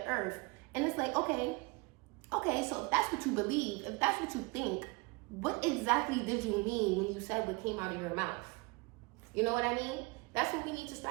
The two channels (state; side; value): quieter; left; 27.5 dB